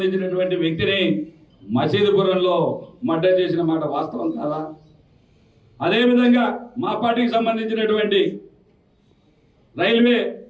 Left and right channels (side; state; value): both; identical; correlation 1.00